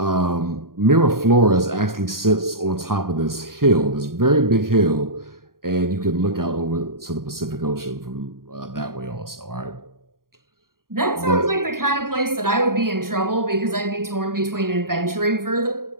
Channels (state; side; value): late; left; 0.92 ms